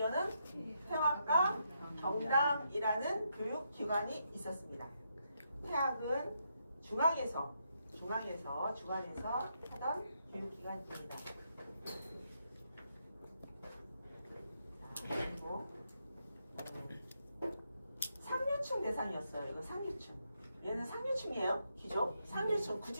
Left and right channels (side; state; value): both; inverted; correlation -0.80